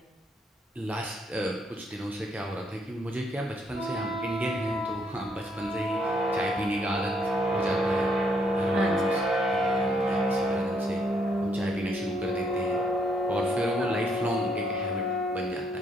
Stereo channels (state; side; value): normal; both; correlation 0.71